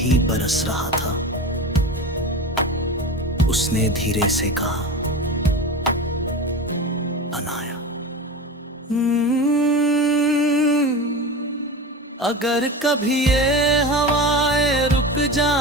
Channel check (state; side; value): normal; both; correlation 0.27